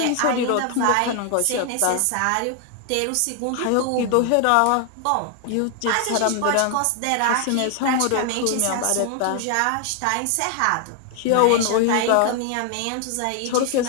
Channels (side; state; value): both; different; correlation 0.00